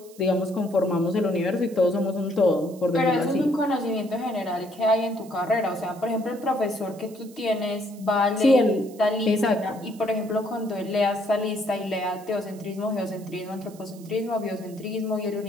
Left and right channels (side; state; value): right; noise; hiss, 23 dB below the sound